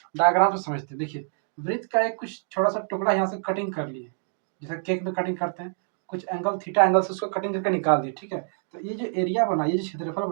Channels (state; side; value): silent; left; digital silence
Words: डायग्राम से समझते हैं। देखिए, वृत्त का एक कुछ छोटा सा टुकड़ा यहाँ से कटिंग कर लिए, जैसे केक में कटिंग करते हैं, कुछ एंगल थीटा एंगल से उसको कटिंग करके निकाल दिए, ठीक है। तो ये जो एरिया बना, ये जो क्षेत्रफल